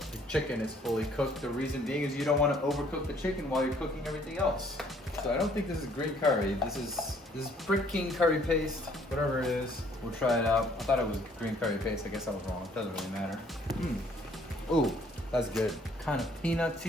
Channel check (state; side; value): normal; both; correlation 0.61